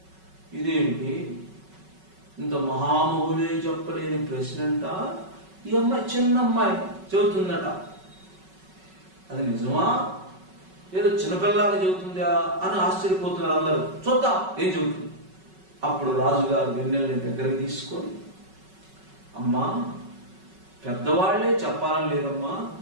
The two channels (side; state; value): left; late; 5.3 ms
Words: ఇదేమిటి, ఇంత మహామహులే చెప్పలేని ప్రశ్న అంట ఈ అమ్మాయి, చిన్న అమ్మాయి చెబుతుందట. అది నిజమా, ఏదో చిన్నపిల్లలాగా చెబుతుందా అని ఆశ్చర్యపోతున్నారు అందరూ. చూద్దాం ఏం చెబుతుంది. అప్పుడు రాజుగారు వెన్నెల్ని దగ్గరికి తీసుకొని, అమ్మా, పెద్దవాళ్లే చెప్పాలని లేదమ్మా,